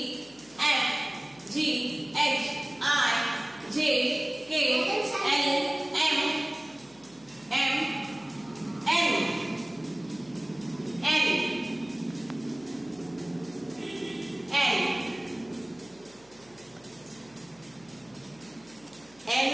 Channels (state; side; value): noise; left; hum, 28 dB below the sound